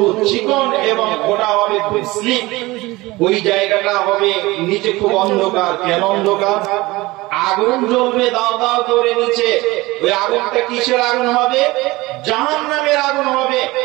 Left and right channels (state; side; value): quieter; left; 20.7 dB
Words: চিকন এবং ওটা হবে খুব স্লিপ। ওই জায়গাটা হবে নিচে খুব অন্ধকার। কেন অন্ধকার? আগুন জ্বলবে দাও দাও করে নিচে। ওই আগুনটা কিসের আগুন হবে? জাহান্নামের আগুন হবে।